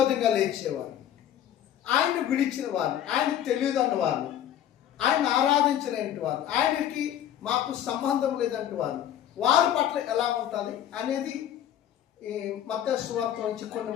లేచేవారు, ఆయన్ని విడిచిన వారు, ఆయనకు తెలియదన్న వారు, ఆయన ఆరాధించినటువంటి వారు, ఆయనకి మాకు సంబంధం లేదంటే వారి పట్ల ఎలా ఉంటుంది అనేది ఈ మత్తయి సువార్త నుంచి కొన్ని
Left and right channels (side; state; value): right; quieter; 10.9 dB